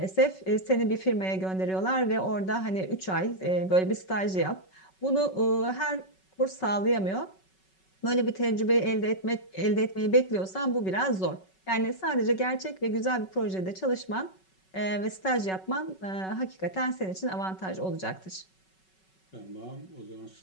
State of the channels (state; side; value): late; right; 5.3 ms